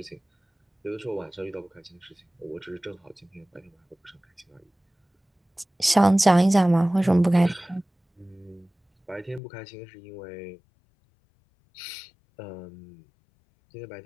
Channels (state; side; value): drops out; right; at 9.4 s